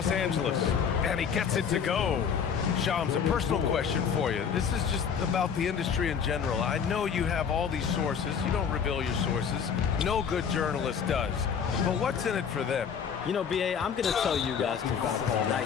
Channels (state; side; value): quieter; right; 7.1 dB